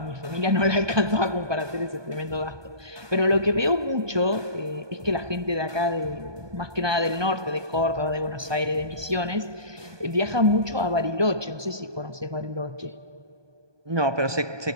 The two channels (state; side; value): late; left; 1.2 ms